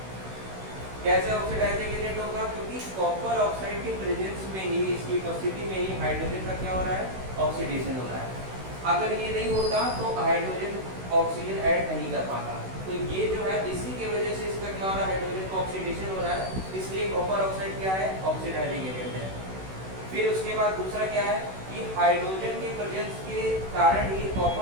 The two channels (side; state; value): left; late; 16 ms